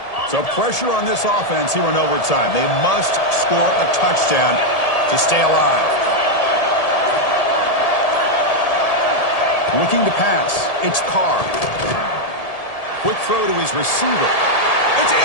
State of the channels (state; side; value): late; right; 1.8 ms